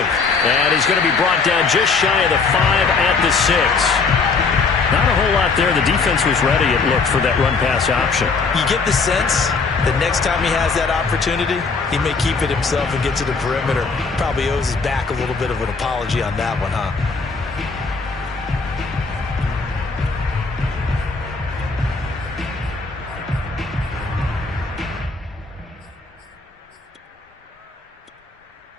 And he's going to be brought down just shy of the 5 at the 6. Not a whole lot there. The defense was ready, it looked, for that run-pass option. You get the sense that next time he has that opportunity, he may keep it himself and get to the perimeter. Probably owes his back a little bit of an apology on that one, huh?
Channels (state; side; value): quieter; right; 4.6 dB